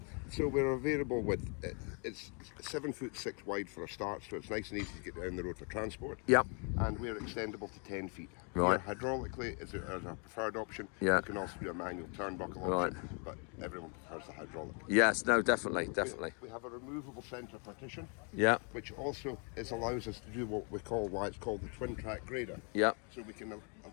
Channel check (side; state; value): right; quieter; 37.3 dB